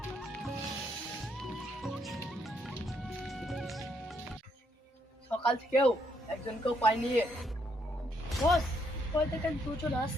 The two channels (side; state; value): both; normal; correlation 0.73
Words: সকাল থেকেও একজনকেও পাইনি। বস, কই থেকে দুজন